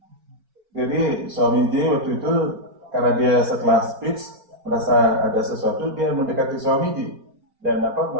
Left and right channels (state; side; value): late; left; 4.7 ms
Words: Jadi Swamiji waktu itu karena dia setelah speech merasa ada sesuatu, dia mendekati Swamiji dan